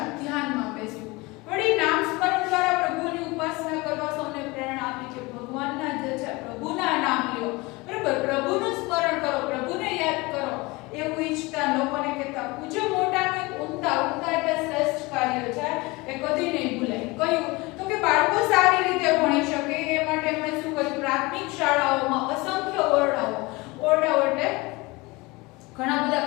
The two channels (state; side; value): quieter; right; 23.8 dB